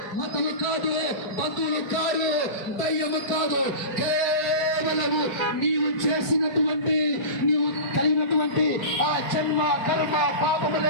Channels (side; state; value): right; late; 4.5 ms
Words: మతము కాదు, బంధువులు కాదు, దయ్యము కాదు, కేవలము నీవు చేసినటువంటి, నీవు కలిగినటువంటి ఆ జన్మ కర్మ